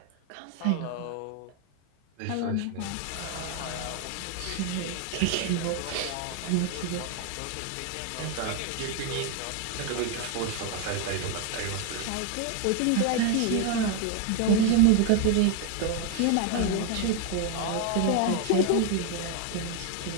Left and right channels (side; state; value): both; different; correlation 0.01